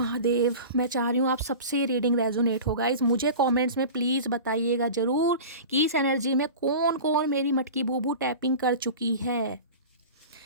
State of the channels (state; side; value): inverted; both; correlation -0.34